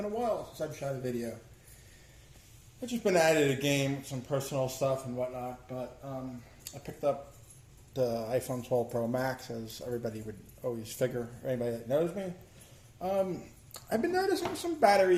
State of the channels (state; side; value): identical; both; correlation 1.00